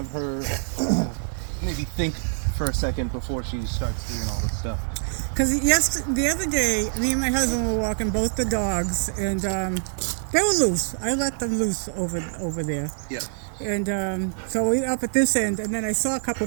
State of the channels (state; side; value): silent; left; digital silence